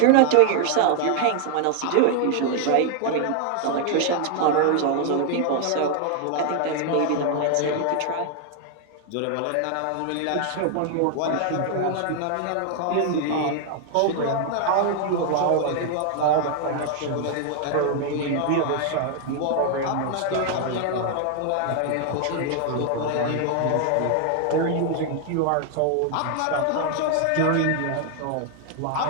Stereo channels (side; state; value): both; different; correlation 0.00